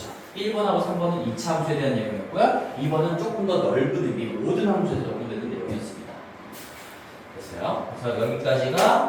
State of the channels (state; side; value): identical; both; correlation 1.00